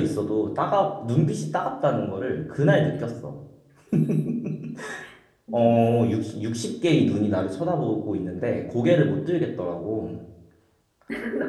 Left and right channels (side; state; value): both; identical; correlation 1.00